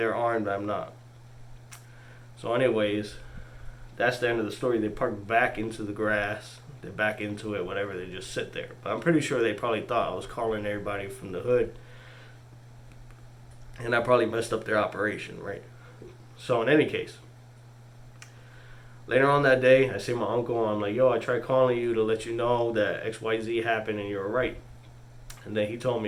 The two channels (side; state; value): both; identical; correlation 1.00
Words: armed, I'm not. So anyways, that's the end of the story. They park back into the grass. They're back into it, whatever. They just sit there. But I'm pretty sure they probably thought I was calling everybody from the hood. And I probably messed up their operation, right? So in any case, later on that day, I see my uncle. I'm like, "Yo, I tried calling you to let you know that XYZ happened and you were right." And then he told